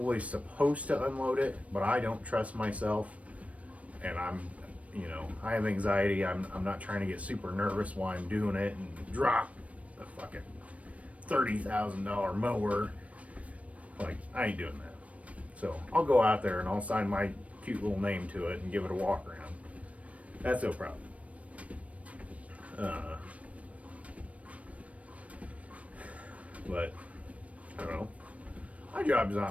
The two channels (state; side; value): late; left; 0.066 ms